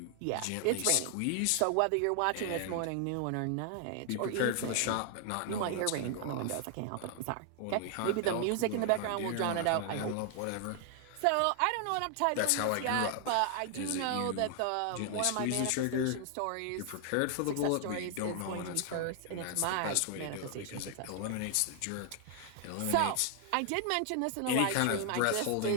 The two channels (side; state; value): both; different; correlation 0.00